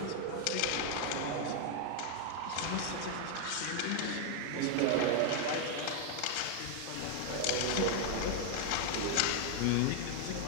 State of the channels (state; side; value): different; both; correlation 0.00